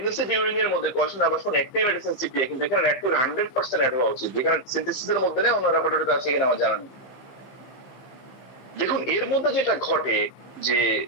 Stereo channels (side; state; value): right; late; 15 ms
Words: ডিউরিং এর মধ্যে কোয়েশ্চন আবার শুন একটাই মেডিসিন সিপিএ, কিন্তু এখানে ন্যাটমিউর 100% অ্যাড হওয়া উচিত, যেখানে সিনথেসিসের মধ্যে নেই, অন্য রেপার্টরিতে আছে কিনা আমার জানা নেই। দেখুন এর মধ্যে যেটা ঘটে যে